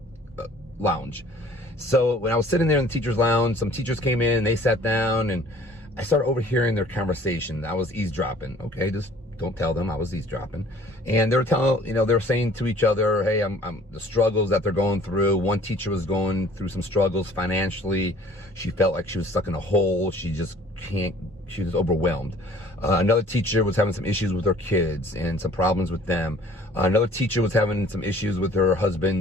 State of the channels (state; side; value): normal; both; correlation 0.53